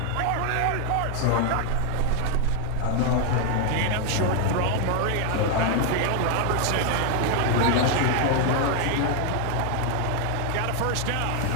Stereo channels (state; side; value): different; both; correlation 0.01